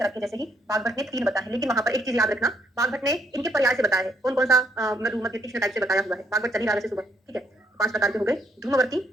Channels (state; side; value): normal; both; correlation 0.71